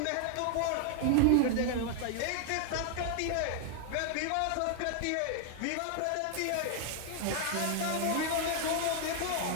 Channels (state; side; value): different; both; correlation 0.00